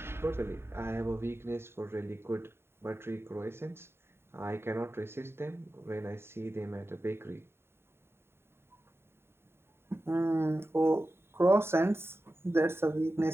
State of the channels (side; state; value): left; late; 0.12 ms